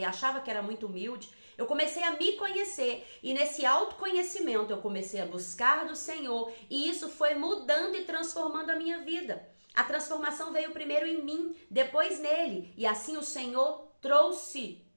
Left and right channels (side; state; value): both; inverted; correlation -1.00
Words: achava que era muito humilde, eu comecei a me conhecer e nesse autoconhecimento eu comecei a buscar do Senhor e isso foi mudando e transformando a minha vida. A transformação veio primeiro em mim, depois nele, e assim o Senhor trouxe